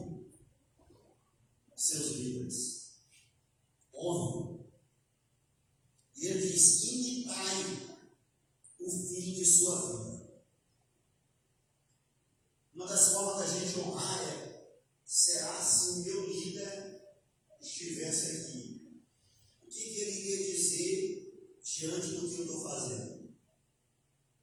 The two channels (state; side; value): identical; both; correlation 1.00